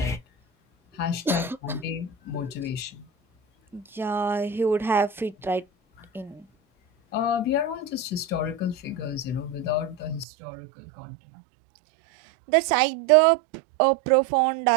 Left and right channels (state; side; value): drops out; left; at 10.2 s